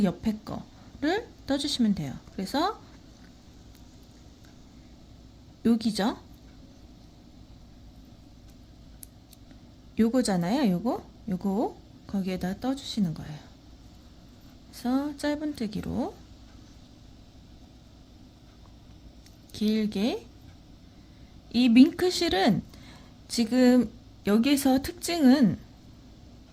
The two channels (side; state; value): both; identical; correlation 1.00